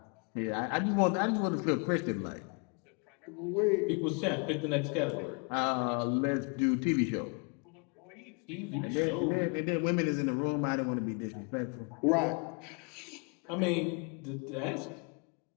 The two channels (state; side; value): quieter; right; 35.9 dB